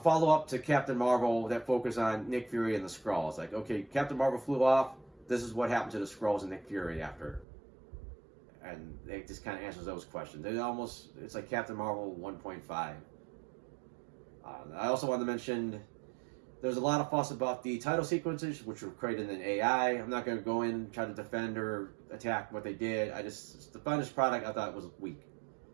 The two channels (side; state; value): left; drops out; at 7.5 s